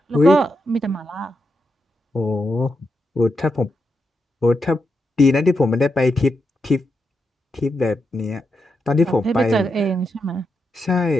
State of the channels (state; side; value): normal; both; correlation 0.85